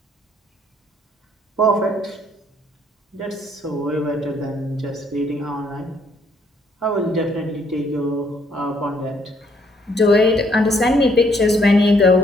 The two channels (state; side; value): normal; both; correlation 0.67